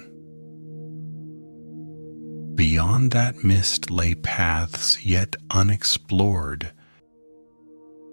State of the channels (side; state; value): both; inverted; correlation -1.00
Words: Beyond that mist lay paths yet unexplored,